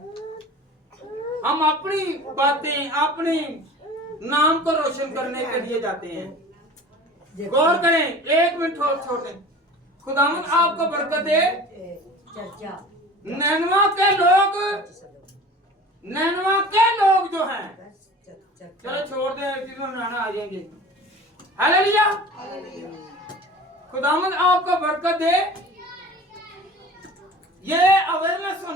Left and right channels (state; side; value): normal; both; correlation 0.40